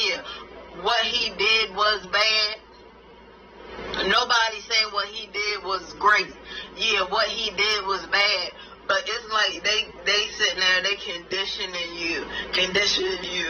what he did was bad. Nobody saying what he did was great. Yeah, what he did was bad. But it's like they sitting there, they conditioning you to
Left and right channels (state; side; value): identical; both; correlation 1.00